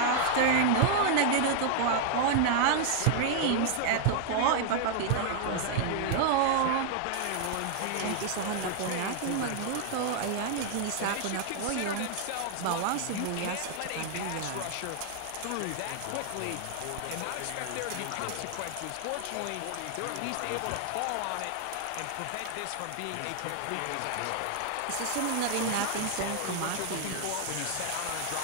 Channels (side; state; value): both; different; correlation 0.00